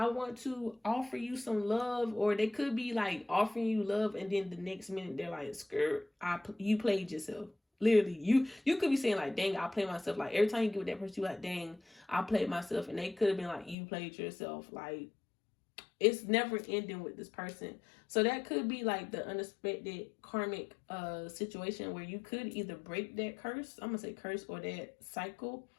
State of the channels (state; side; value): drops out; right; at 13.8 s